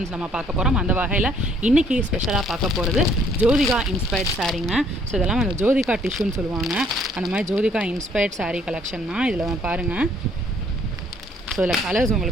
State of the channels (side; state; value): both; normal; correlation 0.63